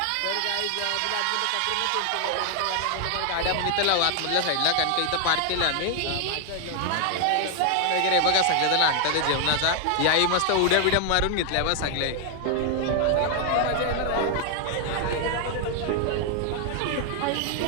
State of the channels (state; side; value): different; both; correlation 0.00